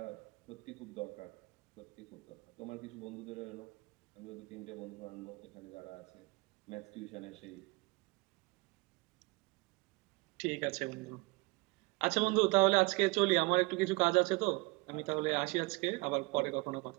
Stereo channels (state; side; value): quieter; left; 25.4 dB